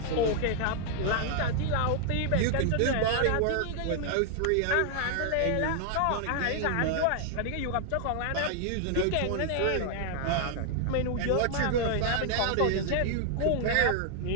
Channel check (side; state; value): both; different; correlation 0.00